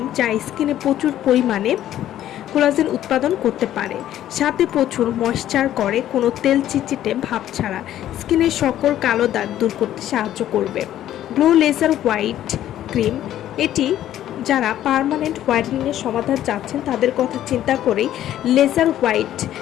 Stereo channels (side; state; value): right; quieter; 12.2 dB